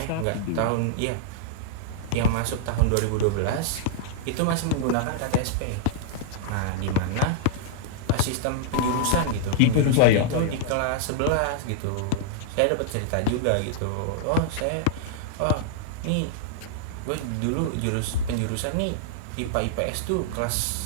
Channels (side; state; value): both; different; correlation -0.01